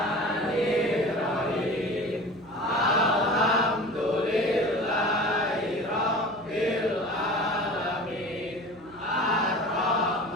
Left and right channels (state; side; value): noise; right; hum, 23 dB below the sound